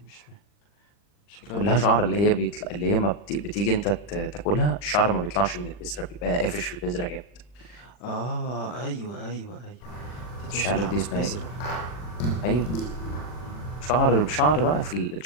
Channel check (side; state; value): right; late; 40 ms